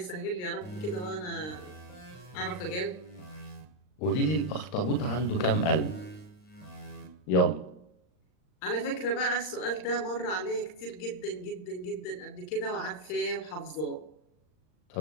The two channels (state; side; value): late; right; 39 ms